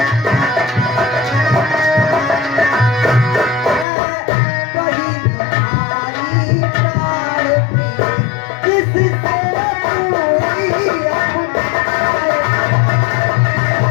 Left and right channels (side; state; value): right; drops out; at 3.9 s